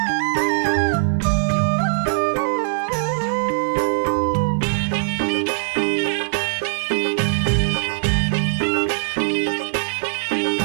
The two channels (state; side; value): silent; left; digital silence